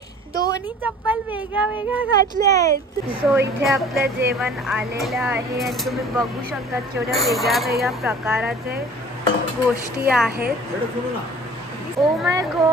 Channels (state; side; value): normal; both; correlation 0.47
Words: दोन्ही चप्पल वेगळ्या वेगळ्या घातल्या आहेत. सो इथे आपलं जेवण आलेलं आहे आणि तुम्ही बघू शकता केवढ्या वेगळ्या वेगळ्या प्रकाराचे गोष्टी आहेत. Oh my